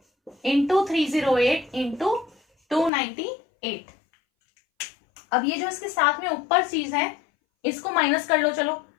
इंटू 308 इंटू 298। अब ये जो इसके साथ में ऊपर चीज है इसको माइनस कर लो। चलो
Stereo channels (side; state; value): right; drops out; at 2.9 s